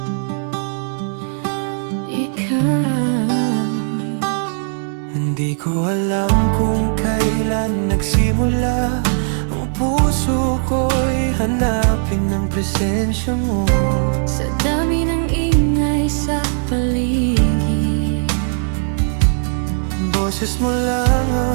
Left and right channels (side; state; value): left; silent; digital silence